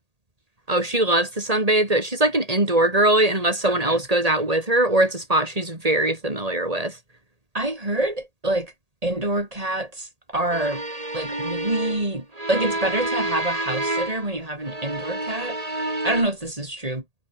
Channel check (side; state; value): left; late; 1.8 ms